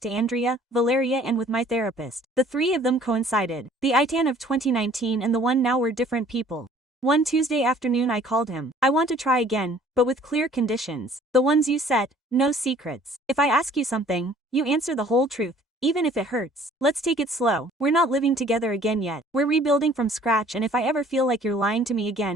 to Andrea, Valeria and with my therapist. The 3 of them coincided. The Itan of 2019 and the one now were different people. One Tuesday afternoon I called him. I want to try again, but with clear conditions. The ones you set, no secrets. If I ask you something, you answer the whole truth, even if it hurts. Let's take it slow. We're not living together again yet. We're rebuilding from scratch and if I ever feel like you're lying to me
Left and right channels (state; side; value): normal; both; correlation 0.55